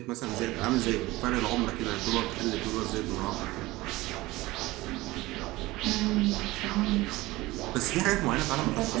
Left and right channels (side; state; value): left; quieter; 19.5 dB